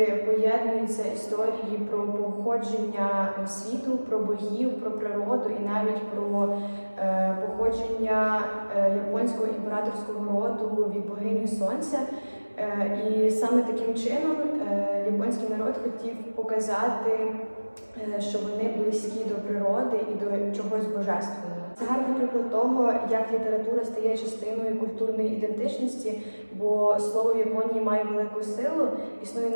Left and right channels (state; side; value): inverted; both; correlation -1.00